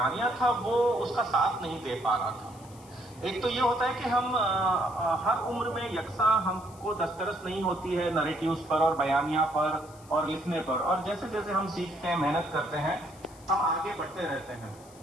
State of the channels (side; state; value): left; noise; hiss, 24 dB below the sound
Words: تھا وہ اس کا ساتھ نہیں دے پا رہا تھا۔ ایک تو یہ ہوتا ہے کہ ہم ہر عمر میں یکساں ہم کو دسترس نہیں ہوتی ہے نریٹیوز پر اور بیانیہ پر اور لکھنے پر، اور جیسے جیسے ہم سیکھتے ہیں، محنت کرتے ہیں، ہم آگے بڑھتے رہتے ہیں۔